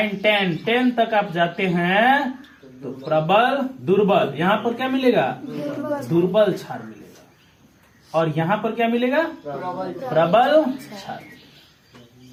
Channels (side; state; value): both; identical; correlation 1.00